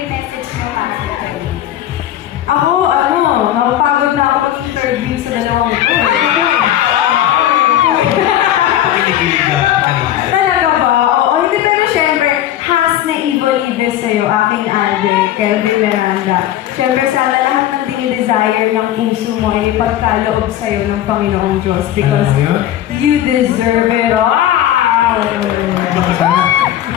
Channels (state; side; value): quieter; right; 12.2 dB